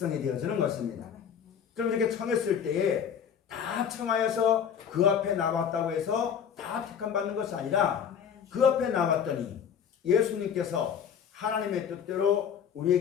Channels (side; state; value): right; quieter; 7.9 dB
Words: 되어지는 것입니다. 그럼 이렇게 청했을 때에 다 청하여서 그 앞에 나왔다고 해서 다 택함 받는 것이 아니라 그 앞에 나왔더니 예수님께서 하나님의 뜻대로